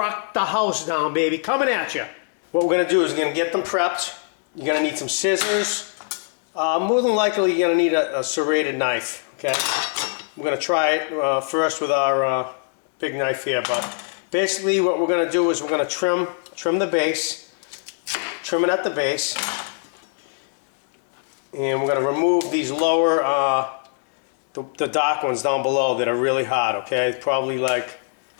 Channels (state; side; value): silent; right; 64 dB below the other